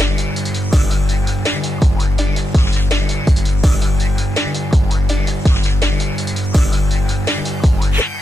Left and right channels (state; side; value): normal; both; correlation 0.86